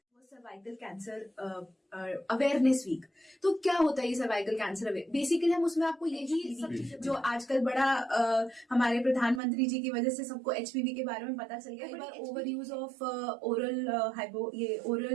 Cervical cancer awareness week. तो क्या होता है ये सर्वाइकल कैंसर अवेयर? बेसिकली हम उसमें आपको यही सब चीजें जो आजकल बड़ा हमारे प्रधानमंत्री जी की वजह से सबको एचपीवी के बारे में पता चल गया। कई बार over use of oral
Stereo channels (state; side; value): drops out; left; at 9.4 s